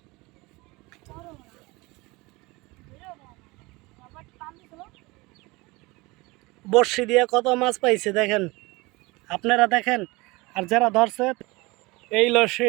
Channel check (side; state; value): left; quieter; 23.5 dB